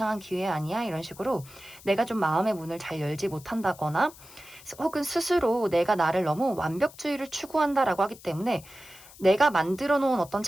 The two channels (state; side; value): noise; left; hiss, 20 dB below the sound